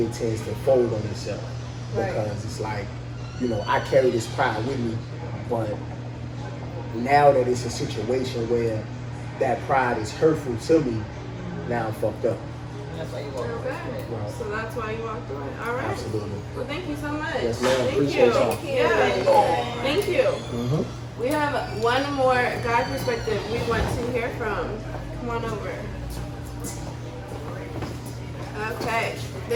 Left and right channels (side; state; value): both; identical; correlation 1.00